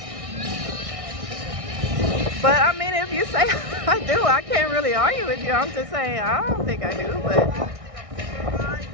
But I mean, if you say I do, I can't really argue with you. I'm just saying, I don't think I do, but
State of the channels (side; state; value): left; late; 1.6 ms